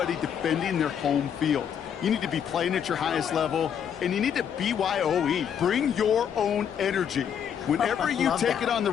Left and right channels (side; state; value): right; quieter; 8.4 dB